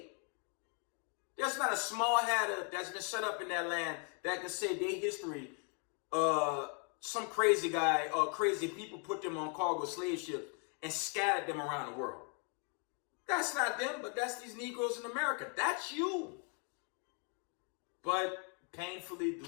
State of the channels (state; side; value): quieter; right; 39.2 dB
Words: There's not a small hatter that's been set up in that land that can say their history, some crazy guy or crazy people put them on cargo slave ships and scattered them around the world. That's not them, but that's these Negroes in America. That's you. But painfully,